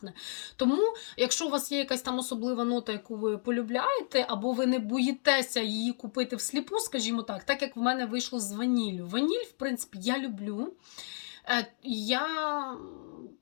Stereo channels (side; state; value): right; silent; 57 dB below the other